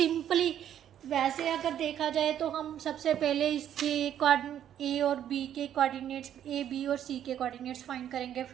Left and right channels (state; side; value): quieter; left; 10.3 dB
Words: वैसे अगर देखा जाए तो हम सबसे पहले इसके ए और बी के कोऑर्डिनेट्स, ए बी और सी के कोऑर्डिनेट्स फाइंड करेंगे,